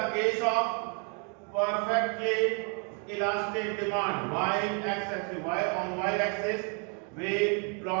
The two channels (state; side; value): quieter; left; 38.7 dB